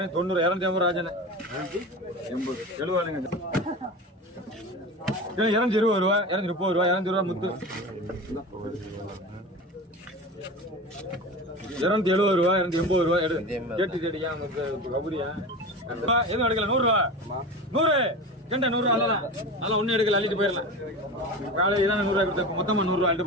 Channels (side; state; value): both; normal; correlation 0.29